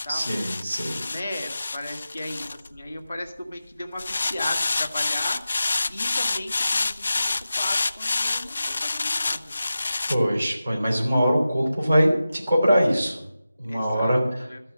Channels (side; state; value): both; inverted; correlation -0.93